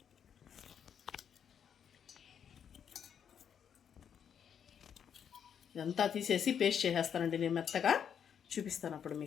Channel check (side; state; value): right; quieter; 8.1 dB